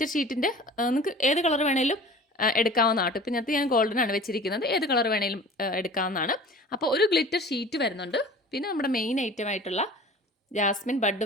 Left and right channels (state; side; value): normal; both; correlation 0.42